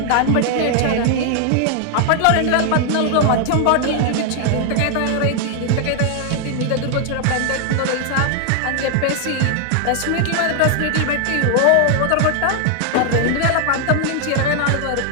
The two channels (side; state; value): both; different; correlation 0.00